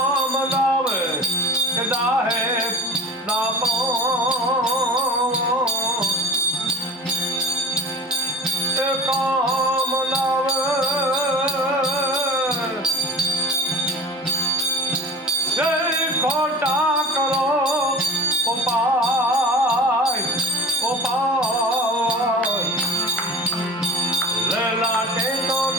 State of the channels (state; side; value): normal; both; correlation 0.35